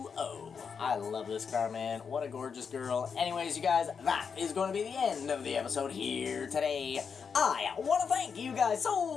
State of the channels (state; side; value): quieter; right; 6.2 dB